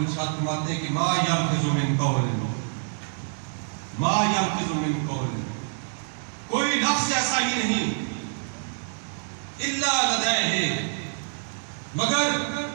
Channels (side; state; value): left; silent; digital silence